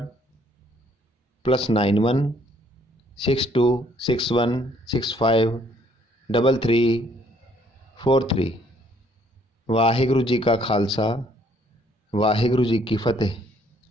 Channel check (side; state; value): both; normal; correlation 0.64